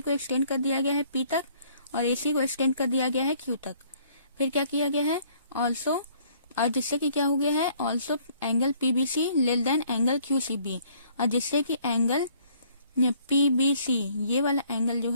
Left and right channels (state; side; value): inverted; both; correlation -0.61